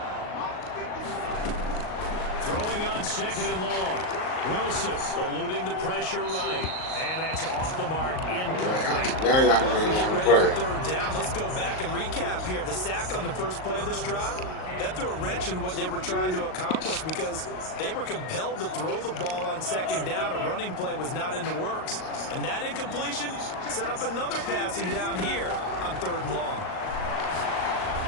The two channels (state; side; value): late; right; 38 ms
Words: Throwing on second and long. Wilson eluding the pressure right. And that's off the mark, incomplete. Now y'all Get ready play. for third down. Let's go back and recap here. The sack on the first play of this drive, that threw a wrench in what they were trying to accomplish because they were compelled to throw the ball on second down. A running play was not in the works. And that incompletion set up another passing down here on third and long.